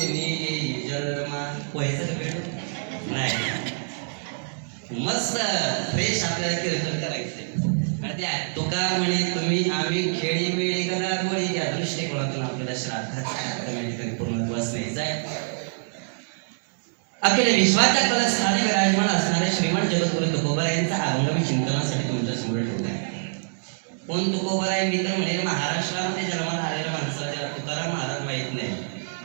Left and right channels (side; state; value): left; silent; digital silence